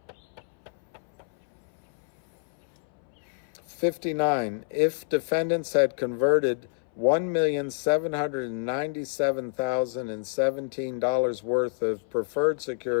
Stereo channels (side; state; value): right; silent; 60 dB below the other